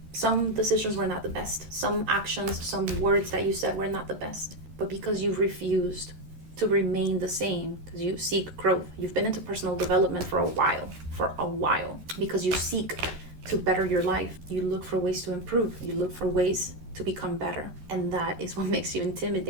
some decisions were not the best, some actions, some words that you said were not the best, but because you've refused to remain the same, because you seek growth. You've been into personal development for a while, because you seek to better your life. You look for ways to improve. You look for ways to become better. And that is what makes you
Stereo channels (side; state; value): left; late; 13 ms